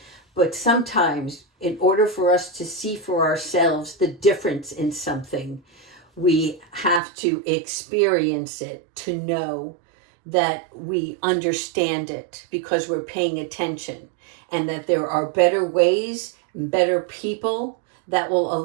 But sometimes in order for us to see for ourselves the difference in something, we have to experience it to know that we understand it because we're paying attention, and that there are better ways, better people that will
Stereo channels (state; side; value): drops out; left; at 7.0 s